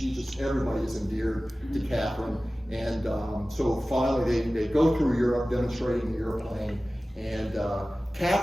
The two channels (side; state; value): both; normal; correlation 0.97